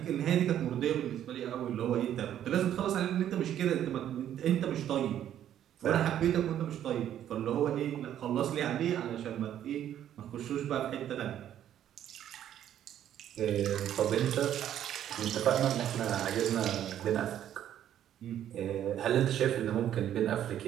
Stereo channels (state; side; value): quieter; left; 10.8 dB